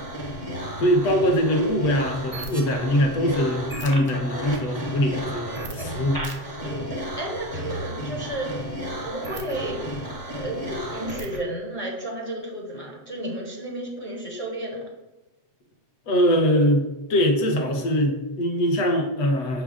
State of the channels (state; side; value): late; right; 7.8 ms